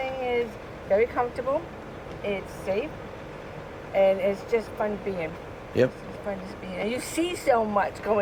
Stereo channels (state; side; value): identical; both; correlation 1.00